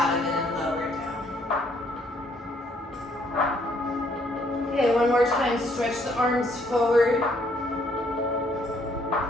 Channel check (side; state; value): both; normal; correlation 0.67